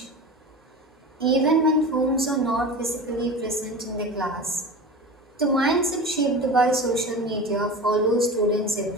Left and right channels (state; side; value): normal; both; correlation 0.31